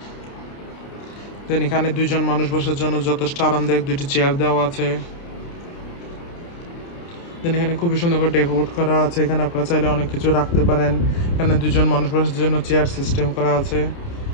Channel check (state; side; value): late; right; 29 ms